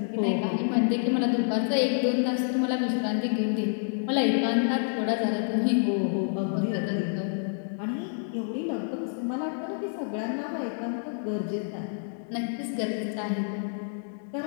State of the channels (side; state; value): right; silent; digital silence